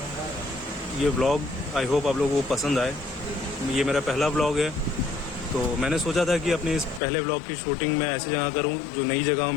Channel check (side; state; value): right; drops out; at 7.0 s